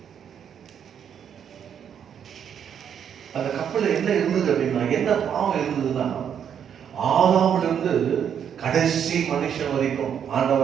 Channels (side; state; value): left; quieter; 8.3 dB